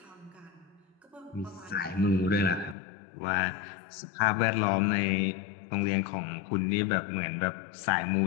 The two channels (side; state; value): right; drops out; at 2.8 s